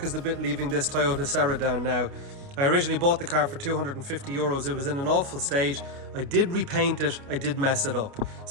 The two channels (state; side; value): late; left; 29 ms